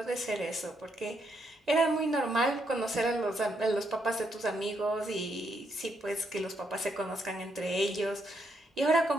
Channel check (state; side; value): normal; both; correlation 0.77